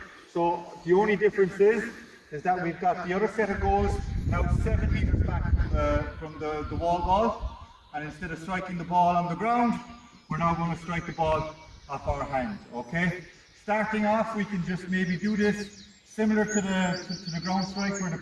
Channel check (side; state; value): both; identical; correlation 1.00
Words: So the only difference is that we've got the other set of goals now 7 meters back from the wall ball. And instead of striking the ball on the ground, we're now going to strike the ball off our hand, okay? Starting off, we can just maybe do this similar to the ground strike where the